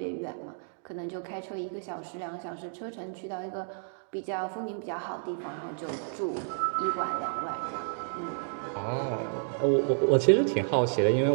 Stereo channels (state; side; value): silent; left; digital silence